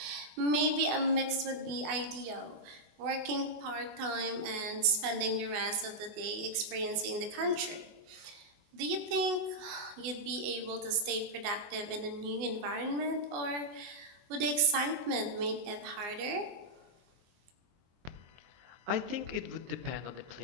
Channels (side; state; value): left; late; 24 ms